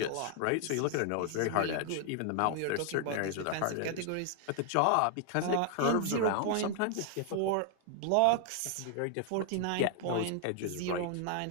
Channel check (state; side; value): different; both; correlation 0.00